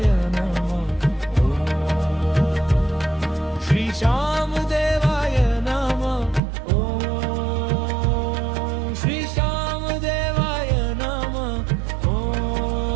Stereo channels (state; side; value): drops out; left; at 6.4 s